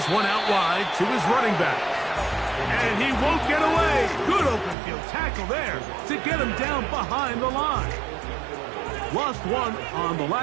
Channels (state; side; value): drops out; left; at 4.8 s